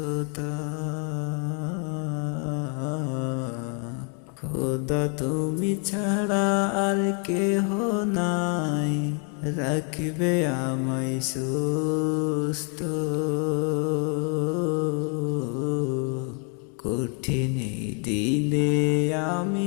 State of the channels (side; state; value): right; quieter; 38.5 dB